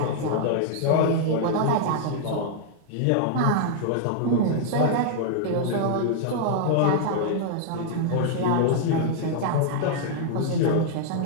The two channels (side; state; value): both; different; correlation -0.01